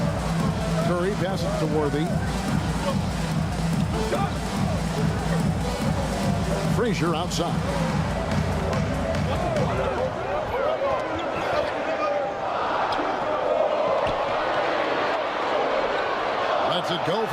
Curry passes to Worthy. Frazier outside. Lets it go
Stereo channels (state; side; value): identical; both; correlation 1.00